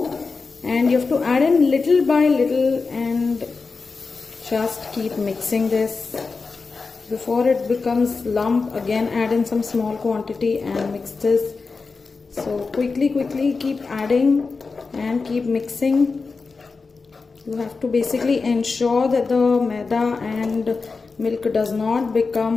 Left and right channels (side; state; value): right; quieter; 4.4 dB